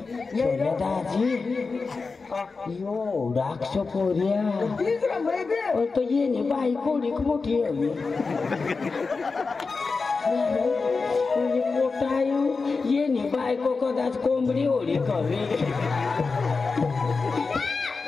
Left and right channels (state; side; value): quieter; right; 4.4 dB